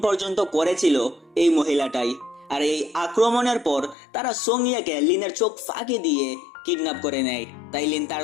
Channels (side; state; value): right; drops out; at 4.0 s